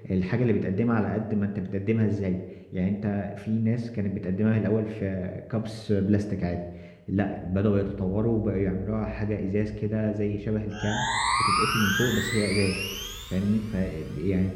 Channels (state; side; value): identical; both; correlation 1.00